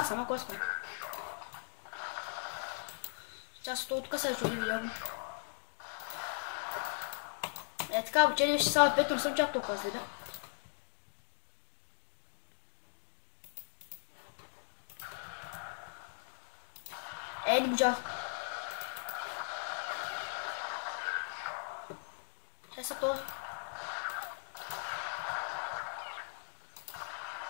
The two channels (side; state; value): right; silent; digital silence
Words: ама кой ска? Част от тук се чуди видео. Така, обичали виж само 5, но не съм чак толкова следа. Не можа. Чай са това.